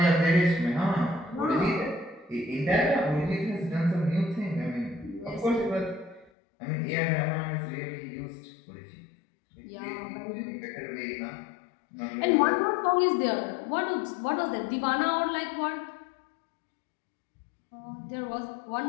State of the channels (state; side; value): drops out; right; at 6.3 s